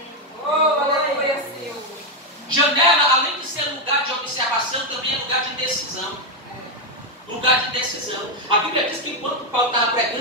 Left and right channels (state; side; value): normal; both; correlation 0.04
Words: Oh, aleluia, Senhor. Janela, além de ser lugar de observação, também é lugar de decisão. Lugar de decisão. A Bíblia diz que enquanto Paulo estava